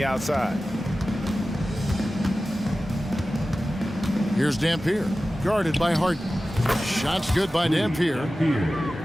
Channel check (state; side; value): normal; both; correlation 0.95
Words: outside? Here's Dampier, guarded by Harden. Shots good by Dampier.